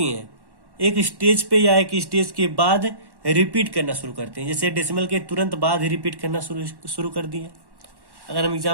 हैं, एक स्टेज पे या एक स्टेज के बाद रिपीट करना शुरू करते हैं। जैसे डेसिमल के तुरंत बाद ही रिपीट करना शुरू कर दिए। अगर हम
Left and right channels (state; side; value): late; left; 1.1 ms